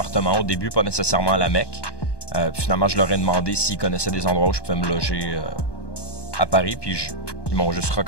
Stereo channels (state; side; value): late; right; 1.2 ms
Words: au début, pas nécessairement à la MEC. Puis finalement, je leur ai demandé s'ils connaissaient des endroits où je pouvais me loger à Paris. Puis ils m'ont juste